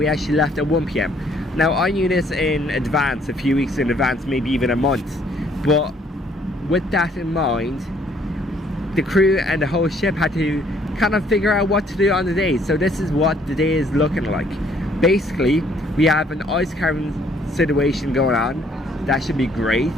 actually left at 1 PM. Now I knew this in advance, a few weeks in advance, maybe even a month. But with that in mind, the crew and the whole ship had to kind of figure out what to do on the day. So this is what the day is looking like. Basically, we have an ice carving situation going on. That should be great.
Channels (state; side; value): normal; both; correlation 0.64